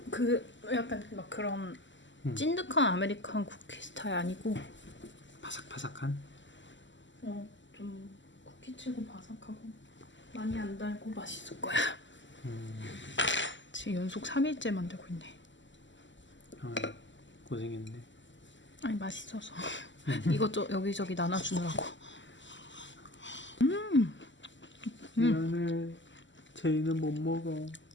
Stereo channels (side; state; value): right; late; 0.54 ms